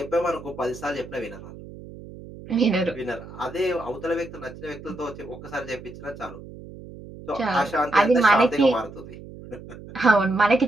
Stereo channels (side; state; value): right; noise; hum, 15 dB below the sound